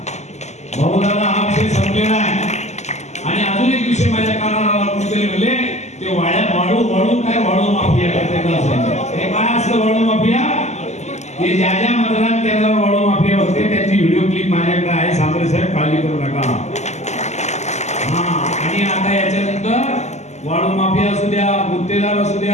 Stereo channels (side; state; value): right; late; 0.33 ms